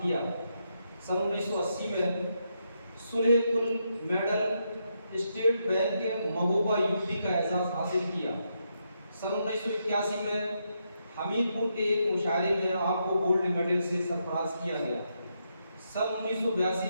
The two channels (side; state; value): both; inverted; correlation -0.80